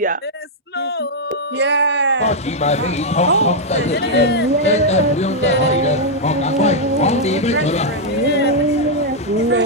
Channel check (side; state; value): both; normal; correlation -0.03